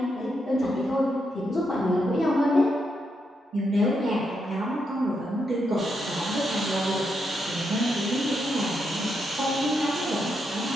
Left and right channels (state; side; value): normal; both; correlation 0.81